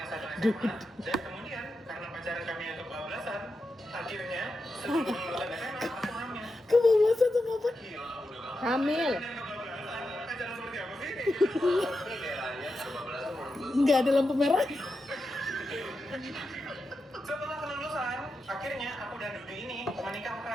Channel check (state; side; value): normal; both; correlation 0.88